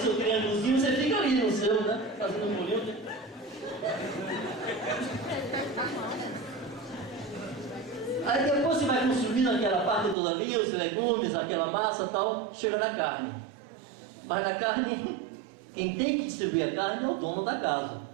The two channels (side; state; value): left; drops out; at 10.2 s